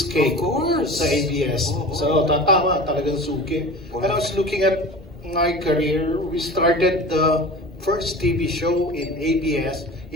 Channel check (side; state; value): both; normal; correlation 0.36